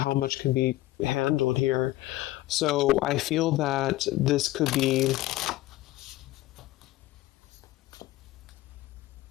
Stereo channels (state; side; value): quieter; right; 17.0 dB